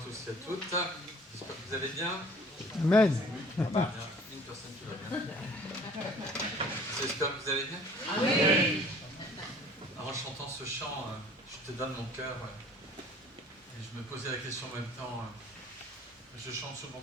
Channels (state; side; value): normal; both; correlation 0.51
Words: et à toutes. J'espère que vous allez bien. Amen. Il y a une personne qui va bien. J'espère que vous allez bien. Oui. En chantant ce chant, je te donne mon cœur. Et je me posais la question en même temps. Je chante souvent